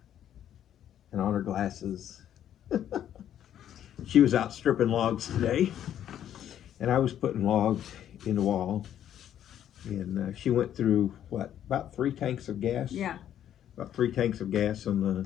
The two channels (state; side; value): quieter; right; 10.6 dB